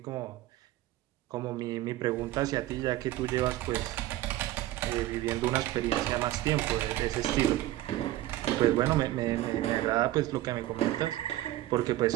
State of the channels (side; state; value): left; quieter; 15.5 dB